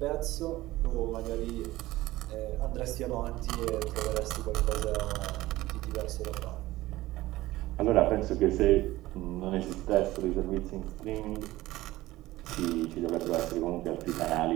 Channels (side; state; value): left; quieter; 17.4 dB